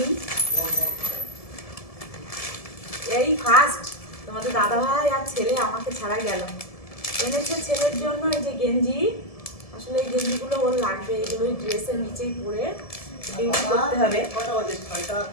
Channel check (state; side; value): late; right; 1.7 ms